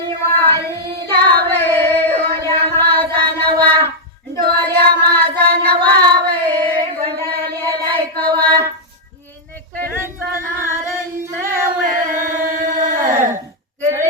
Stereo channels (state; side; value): normal; both; correlation -0.05